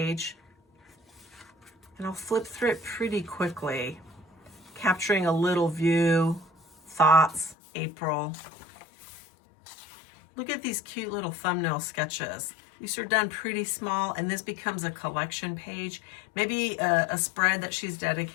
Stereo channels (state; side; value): drops out; right; at 7.6 s